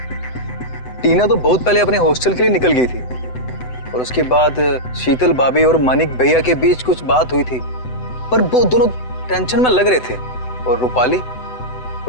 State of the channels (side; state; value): right; late; 7.9 ms